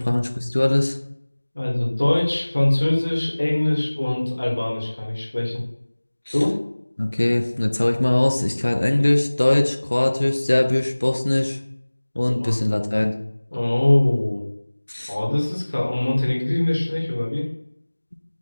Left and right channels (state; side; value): inverted; both; correlation -1.00